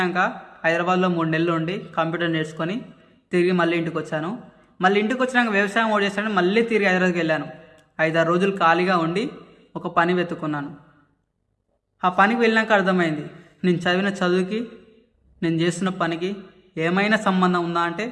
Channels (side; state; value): both; identical; correlation 1.00